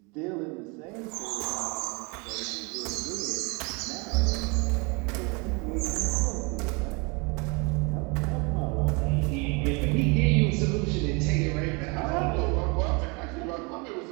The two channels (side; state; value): left; quieter; 30.0 dB